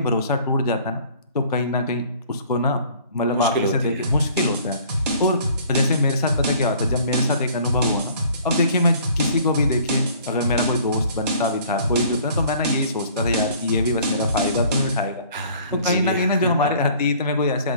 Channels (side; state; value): both; inverted; correlation -0.53